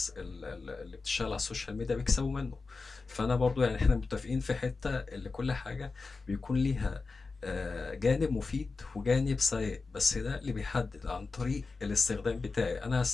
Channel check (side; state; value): right; quieter; 4.1 dB